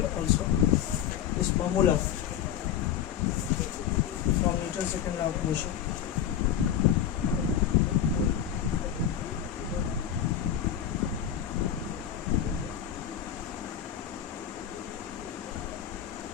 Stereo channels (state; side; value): quieter; right; 9.7 dB